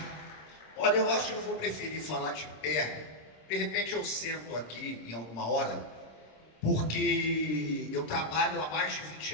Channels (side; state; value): right; late; 26 ms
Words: Olha, eu acho que eu vou preferir falar de pé. De repente eu sento aqui em alguma hora, porque eu trabalho há mais de